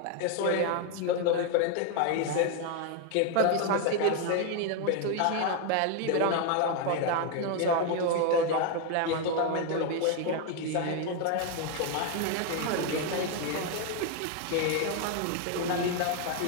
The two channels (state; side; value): different; both; correlation 0.01